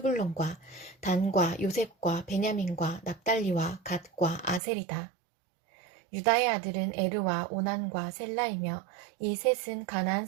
단과 요셉과 베냐민과 납달리와 갓과 아셀이다. 유다의 아들은 에르와 오난과 셀라이며 이 셋은 가나안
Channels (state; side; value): drops out; left; at 4.6 s